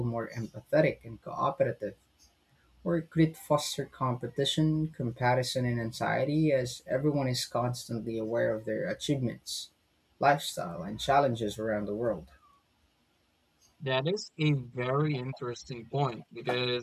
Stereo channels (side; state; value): both; identical; correlation 1.00